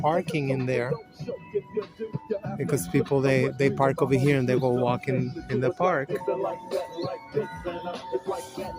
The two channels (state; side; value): identical; both; correlation 1.00